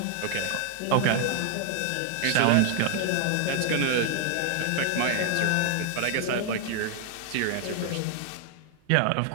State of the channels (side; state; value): both; different; correlation 0.00